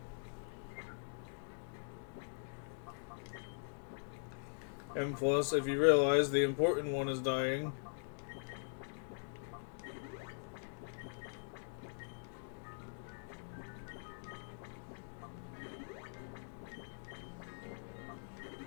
And plus, if you realize the important one is dying.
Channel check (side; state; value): right; silent; digital silence